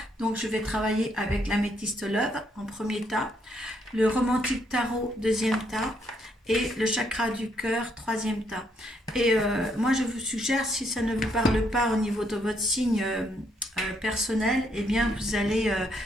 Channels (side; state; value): both; normal; correlation 0.73